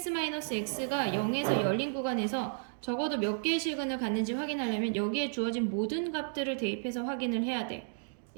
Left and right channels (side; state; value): left; silent; digital silence